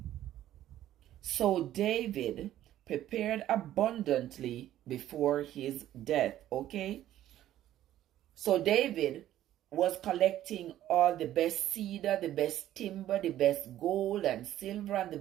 So David prepared abundantly before his death. Okay? So David was collecting all the best cedar, the best timber, the best gold and silver, and the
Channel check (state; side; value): quieter; left; 12.9 dB